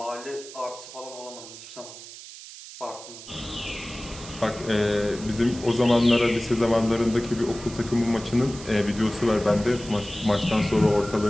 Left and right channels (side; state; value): right; noise; hiss, 15 dB below the sound